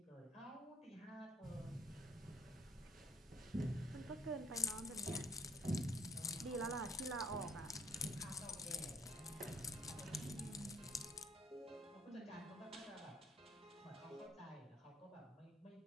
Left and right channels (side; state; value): both; normal; correlation 0.60